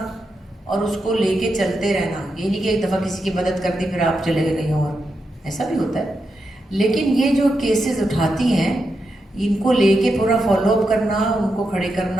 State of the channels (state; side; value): normal; both; correlation 0.86